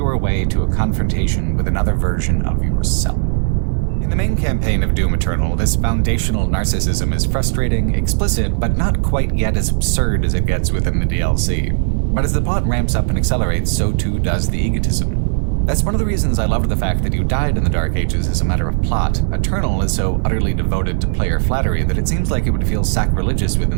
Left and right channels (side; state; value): left; silent; digital silence